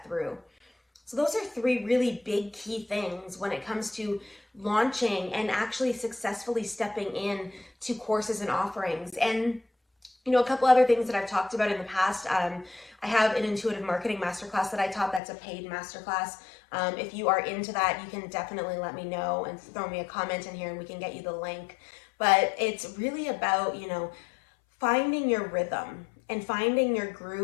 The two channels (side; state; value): right; drops out; at 15.2 s